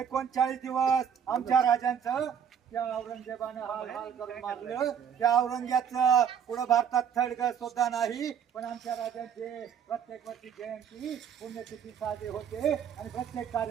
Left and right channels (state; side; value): quieter; left; 8.0 dB